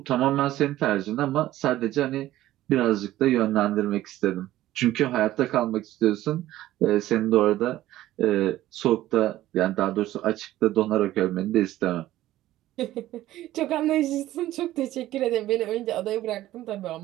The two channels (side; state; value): left; quieter; 14.8 dB